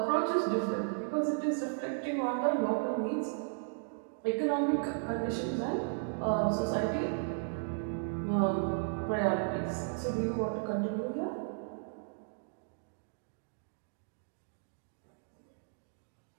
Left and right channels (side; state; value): left; silent; digital silence